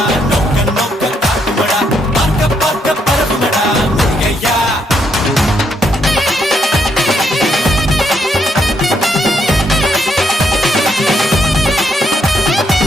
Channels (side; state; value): both; normal; correlation 0.75